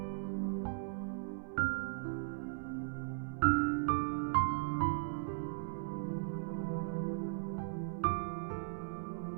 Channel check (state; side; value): silent; left; 52 dB below the other